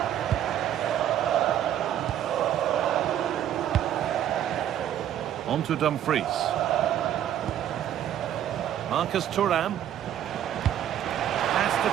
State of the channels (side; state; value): left; quieter; 10.9 dB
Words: On to Dumfries. Marcus Thuram. Has to